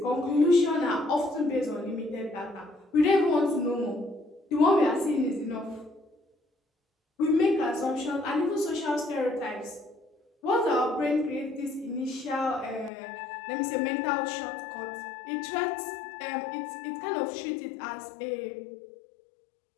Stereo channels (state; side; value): drops out; right; at 12.9 s